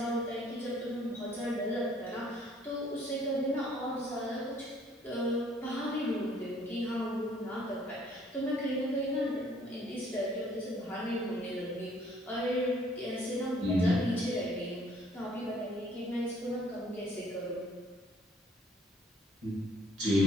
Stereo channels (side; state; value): both; normal; correlation 0.61